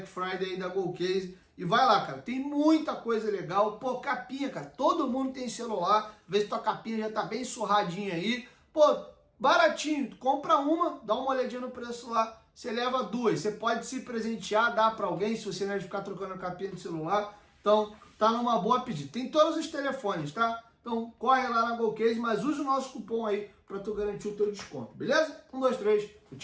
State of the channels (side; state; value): both; identical; correlation 1.00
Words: Friday aí da GolCase. E vai lá, cara, tem muita coisa legal. Pô, capinha, cara, todo mundo tem celular. Vê se tua capinha já tá bem surradinha aí. Pô, baratinho, tu compra uma, dá uma olhadinha no preço lá, você leva 2. Você pode se presentear, dar pra alguém, se você não é de ficar trocando a capinha do celular. Então, tá numa boa pedida. Tem todos os telefones, tá? Então, corre lá na GolCase, mas use o nosso cupom aí pra tu garantir o teu desconto, beleza? 1, 2, 3,